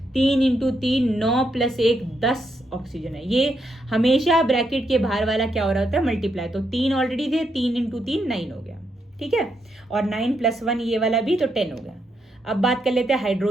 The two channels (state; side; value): normal; both; correlation 0.79